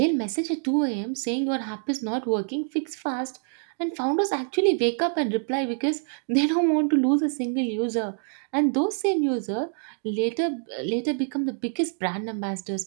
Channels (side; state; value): left; silent; 61 dB below the other